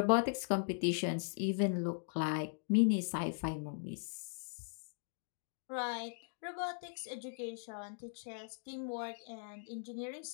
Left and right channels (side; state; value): right; silent; digital silence